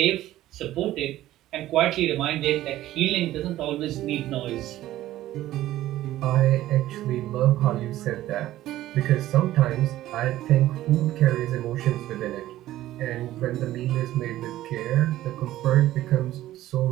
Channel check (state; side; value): quieter; left; 14.6 dB